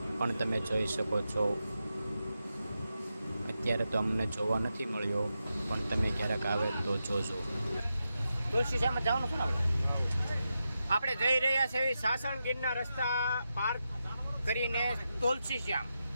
પણ તમે જોઈ શકો છો. અત્યારે તો અમને જોવા નથી મળ્યો, પણ તમે ક્યારેક આવે તો જોજો. તુલસી શ્યામ જવાનું છે ને આપણે જઈ રહ્યા છીએ સાસણગીરના રસ્તા પાર કરીને તુલસી શ્યામ.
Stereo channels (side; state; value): both; inverted; correlation -0.88